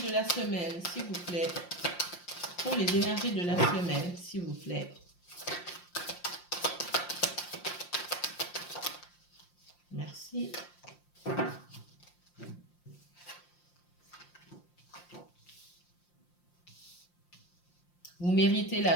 la semaine, s'il vous plaît. Pour les énergies de la semaine, s'il vous plaît. Merci. Vous méritez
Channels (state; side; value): late; right; 5.7 ms